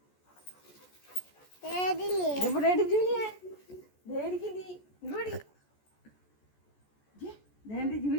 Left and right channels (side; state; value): right; late; 14 ms